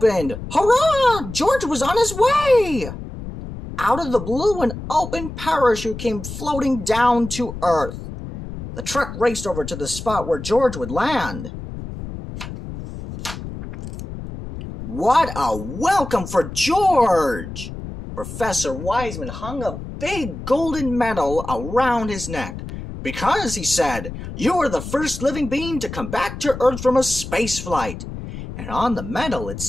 Hurrah! George was on his way! Out of the blue, an open parachute came floating down to Earth. The truck raced over to the spot where George would land. What a welcome for George! Professor Wiseman hung a big golden medal around his neck. Because, he said, you are the first living being to come back to Earth from a space flight. And on the medal it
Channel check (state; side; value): noise; left; rumble, 10 dB below the sound